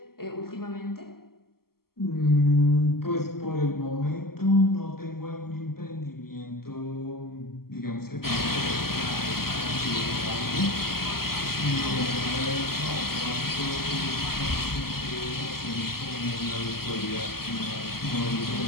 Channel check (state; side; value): late; right; 0.94 ms